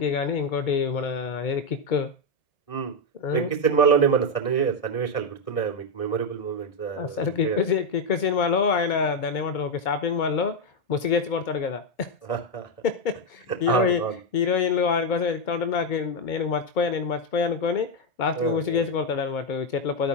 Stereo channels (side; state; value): right; late; 2.2 ms